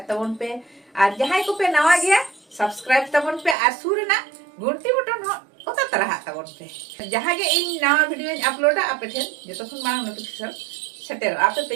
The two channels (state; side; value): drops out; left; at 3.6 s